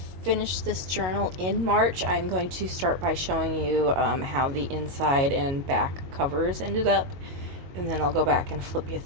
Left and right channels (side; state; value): left; late; 22 ms